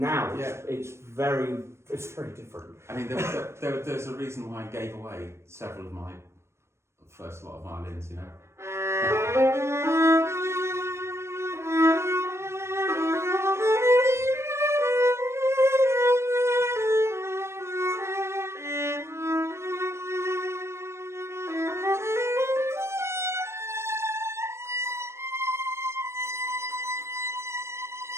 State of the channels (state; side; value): late; left; 0.13 ms